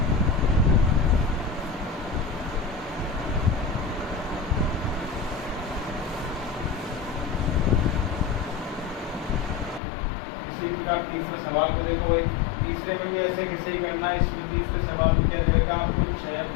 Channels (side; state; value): right; drops out; at 9.8 s